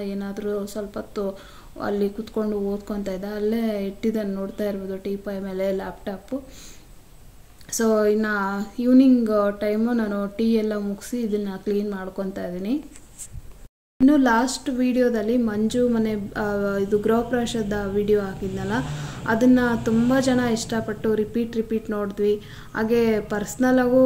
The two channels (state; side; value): identical; both; correlation 1.00